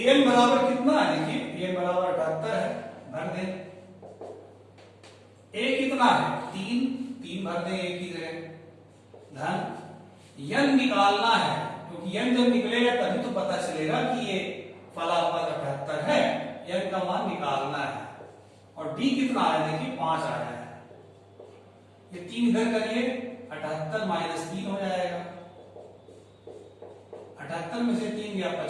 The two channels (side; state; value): both; identical; correlation 1.00